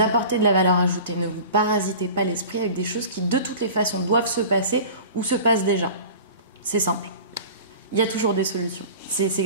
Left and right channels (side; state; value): both; inverted; correlation -0.39